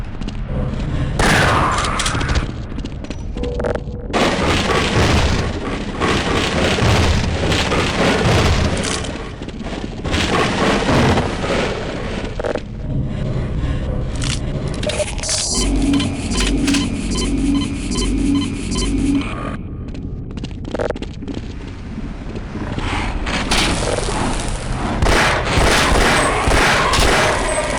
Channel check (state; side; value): identical; both; correlation 1.00